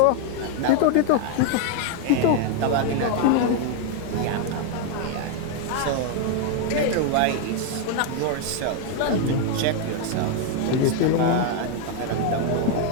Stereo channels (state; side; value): different; both; correlation 0.01